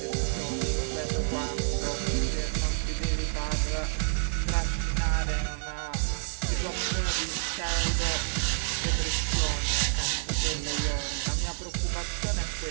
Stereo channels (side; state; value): left; silent; 56 dB below the other